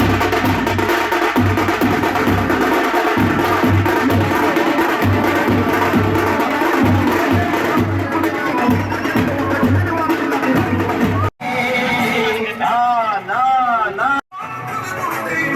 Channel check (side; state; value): both; identical; correlation 1.00